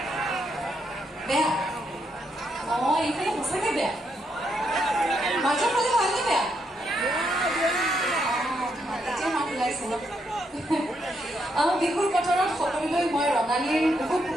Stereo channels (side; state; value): both; normal; correlation 0.78